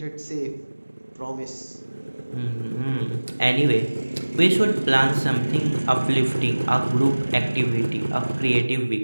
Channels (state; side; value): inverted; both; correlation -1.00